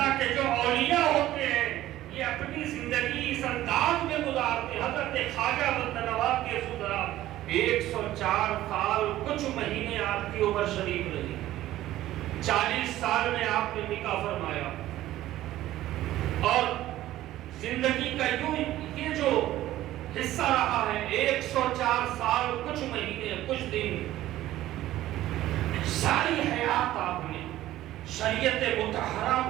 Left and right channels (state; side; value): quieter; left; 14.6 dB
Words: کے جو اولیاء ہوتے ہیں یہ اپنی زندگی اس انداز میں گزارتے ہیں۔ حضرت خواجہ بندہ نواز گیسو درات 104 سال کچھ مہینے آپ کی عمر شریف رہی، 40 سال میں آپ نے نکاح فرمایا، اور زندگی کا یوں یہ جو حصہ رہا ہے 104 سال کچھ مہینے کچھ دن، ساری حیات آپ نے شریعت مطہرہ